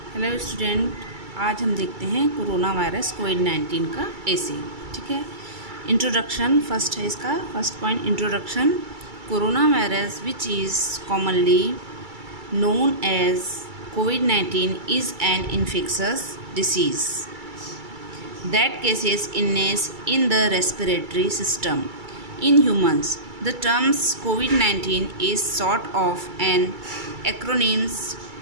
Hello student, आज हम देखते हैं कोरोना वायरस कोविड-19 का ऐसे। ठीक है। इंट्रोडक्शन फर्स्ट है इसका। First point introduction. Corona virus which is commonly known as COVID-19 is an infectious disease that causes illness in the respiratory system. In humans, the term COVID-19 is sort of an acronym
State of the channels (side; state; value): left; late; 2.3 ms